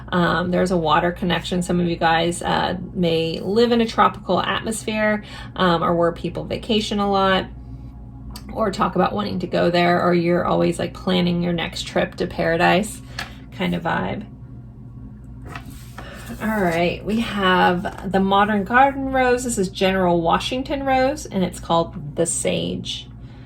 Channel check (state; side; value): identical; both; correlation 1.00